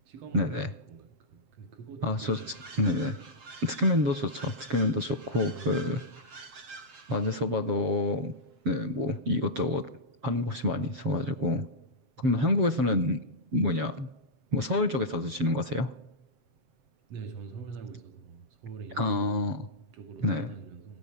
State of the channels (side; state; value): left; late; 7.6 ms